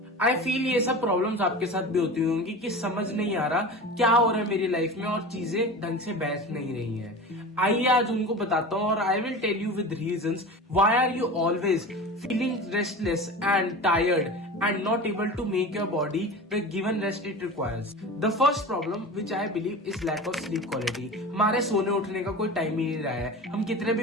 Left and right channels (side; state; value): both; normal; correlation 0.32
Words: I feel ये सब problems आपके साथ भी होती होंगी कि समझ नहीं आ रहा क्या हो रहा है मेरी लाइफ में और चीजें ढंग से बैठ नहीं रही हैं। आइए आज उनको बताता हूँ और I will tell you with reasons why are you always feeling restless and tired and not able to make your body the given rest it requires. The first problem which I believe is lack of sleep quality. हमारे सोने उठने का कोई time ही नहीं रहा है, हम कितने